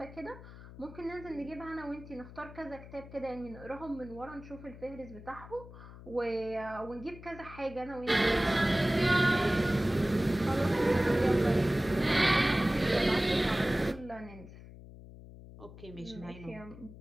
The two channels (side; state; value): left; noise; hum, 16 dB below the sound